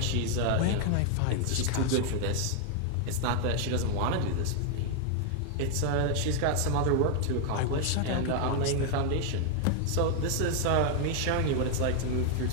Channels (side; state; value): both; different; correlation 0.00